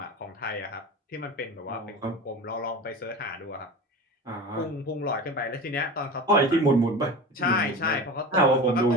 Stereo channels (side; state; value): both; normal; correlation 0.31